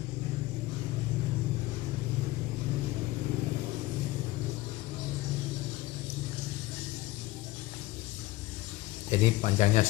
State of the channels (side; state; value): right; quieter; 18.5 dB